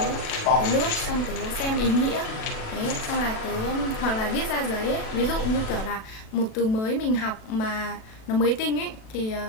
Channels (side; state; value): right; late; 36 ms